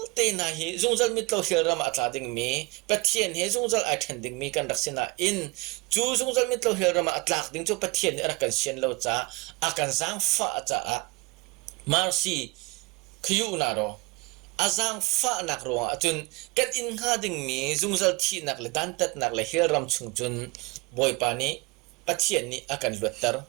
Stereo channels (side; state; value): left; quieter; 25.8 dB